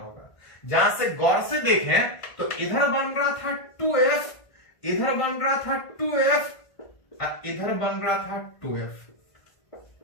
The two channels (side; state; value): right; late; 1.5 ms